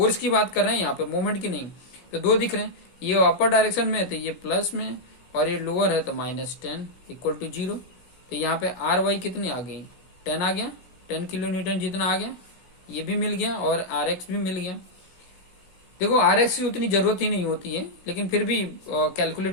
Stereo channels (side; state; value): right; late; 17 ms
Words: की बात कर रहे हैं यहाँ पे, मोमेंट की नहीं, तो दो दिख रहे हैं। ये अपर डायरेक्शन में है तो ये प्लस में, और ये लोअर है तो -10 इक्वल टू 0। तो यहाँ पे आर वाई कितनी आ गई, 10 आ गया, 10 किलो न्यूटन जितना आ गया, ये भी मिल गया और आर एक्स भी मिल गया। देखो आर एक्स की उतनी जरूरत ही नहीं होती है, लेकिन फिर भी